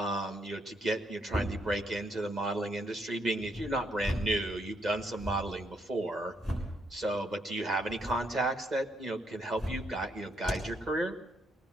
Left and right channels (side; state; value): both; normal; correlation 0.75